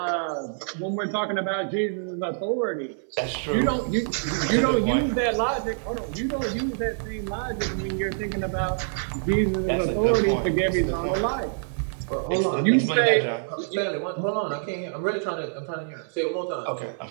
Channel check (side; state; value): left; silent; 57 dB below the other